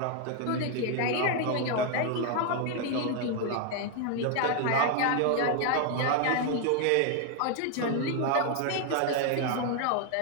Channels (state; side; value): different; both; correlation 0.00